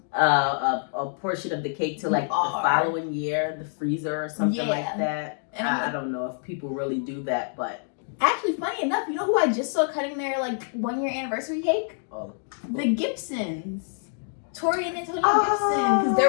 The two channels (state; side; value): silent; right; digital silence